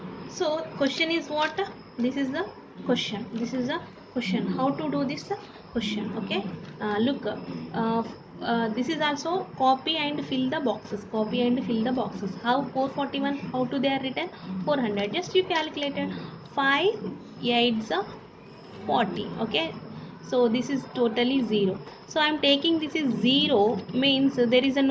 So question is what? This is the question. This is the question. How to do this question? Okay. Look. this is also copy and fill the boxes, copy and fill the boxes. How 441, how to they are written? 400, just you calculated. 5 8s are 40. Okay, so this is totally 0. So I am taking this is 0, means there is a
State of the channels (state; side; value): identical; both; correlation 1.00